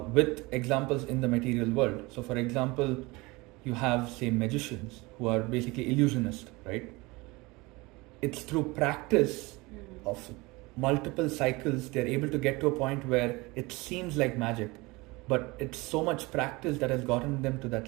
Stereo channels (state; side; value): quieter; left; 23.4 dB